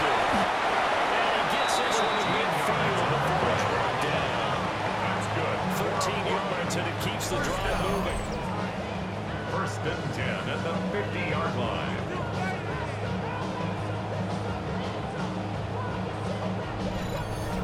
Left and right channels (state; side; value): identical; both; correlation 1.00